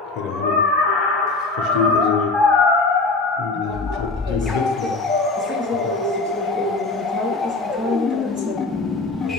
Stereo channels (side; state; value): right; quieter; 3.5 dB